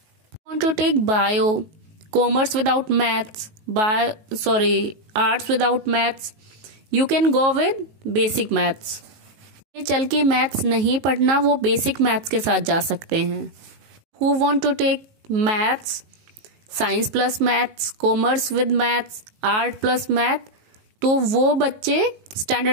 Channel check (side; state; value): left; late; 19 ms